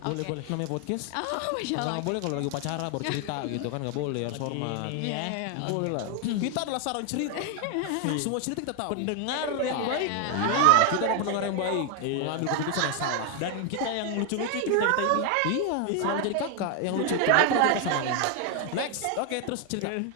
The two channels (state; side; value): different; both; correlation 0.00